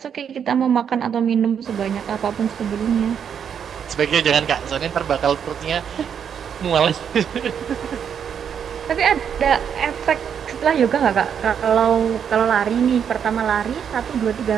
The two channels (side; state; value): left; quieter; 7.9 dB